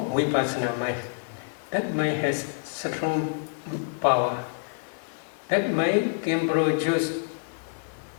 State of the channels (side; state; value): right; silent; digital silence